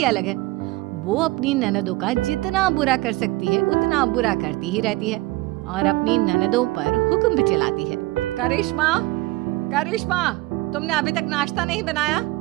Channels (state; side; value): quieter; left; 20.3 dB